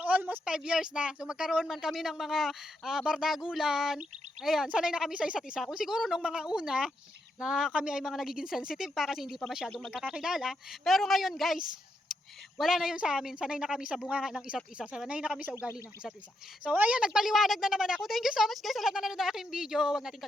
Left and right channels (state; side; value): normal; both; correlation 0.81